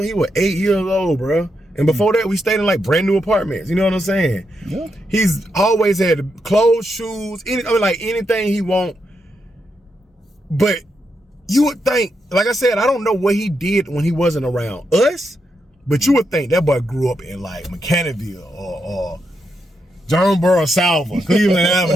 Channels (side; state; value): both; normal; correlation 0.83